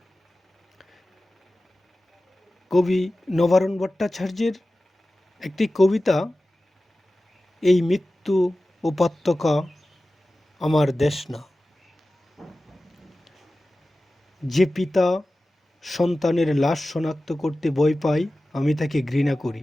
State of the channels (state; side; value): normal; both; correlation 0.95